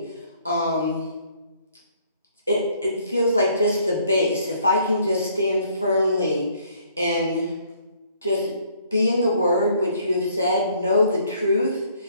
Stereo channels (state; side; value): inverted; both; correlation -0.63